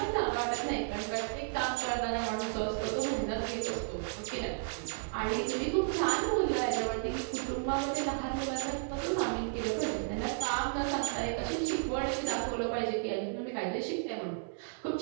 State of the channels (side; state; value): left; silent; 56 dB below the other